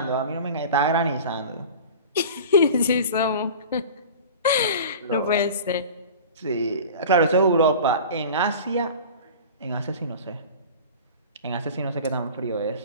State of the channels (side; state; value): both; inverted; correlation -0.37